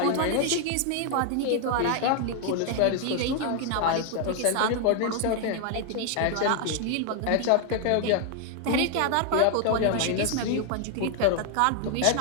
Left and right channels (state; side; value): different; both; correlation 0.00